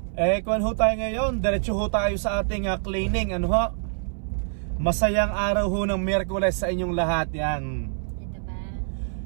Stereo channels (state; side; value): silent; left; 61 dB below the other